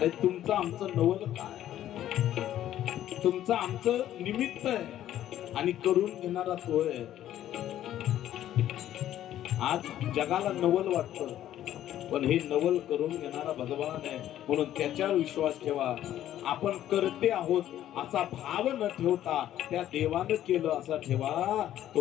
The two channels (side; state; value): right; quieter; 12.2 dB